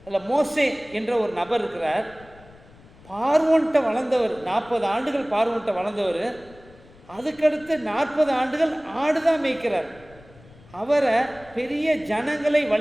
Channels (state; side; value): noise; left; rumble, 24 dB below the sound